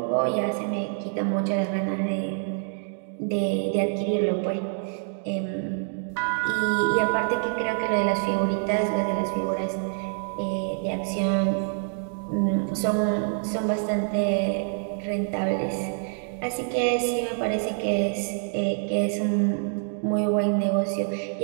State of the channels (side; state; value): left; silent; 58 dB below the other